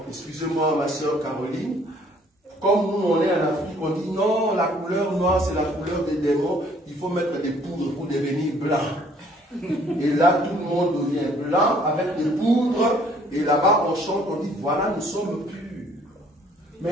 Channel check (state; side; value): normal; both; correlation 0.60